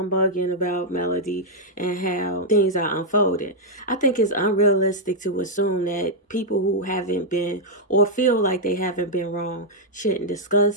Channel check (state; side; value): normal; both; correlation -0.03